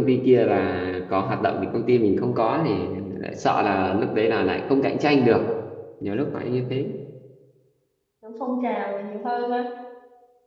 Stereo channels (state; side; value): identical; both; correlation 1.00